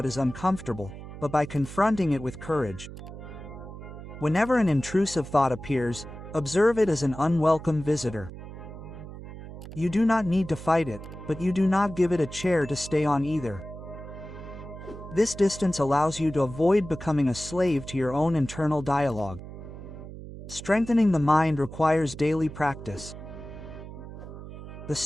is uncomfortable, but by confronting it with courage. Whenever an intrusive thought appears, observe it as an unwelcome visitor. You do not need to fight it, but you do not give it a chair to stay on either. This distance allows you to avoid becoming a slave to your own internal dialogue. Strengthening the mind requires daily practice. The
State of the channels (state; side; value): noise; right; hum, 12 dB below the sound